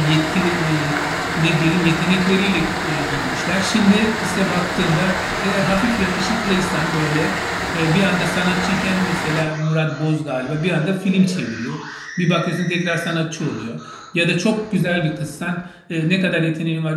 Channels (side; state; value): both; identical; correlation 1.00